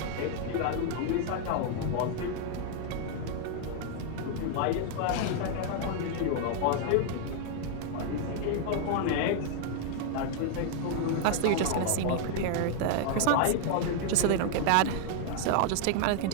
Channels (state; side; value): different; both; correlation 0.00